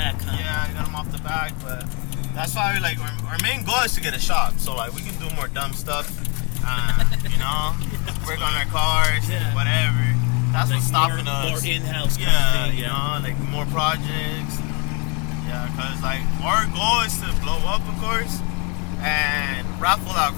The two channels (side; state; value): right; quieter; 33.6 dB